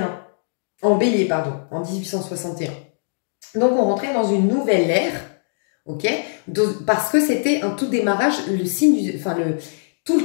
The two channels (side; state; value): right; silent; digital silence